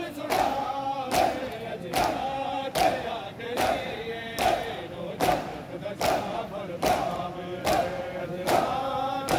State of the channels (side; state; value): both; identical; correlation 1.00